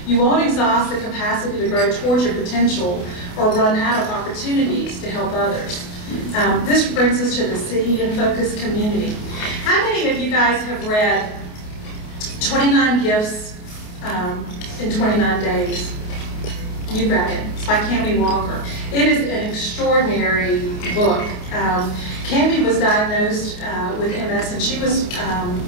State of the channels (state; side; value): late; right; 28 ms